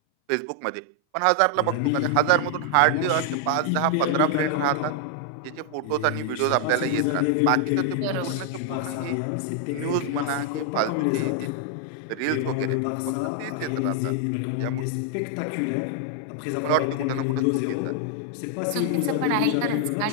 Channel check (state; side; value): different; both; correlation 0.00